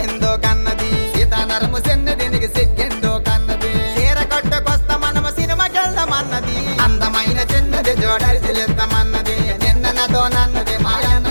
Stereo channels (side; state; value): both; inverted; correlation -1.00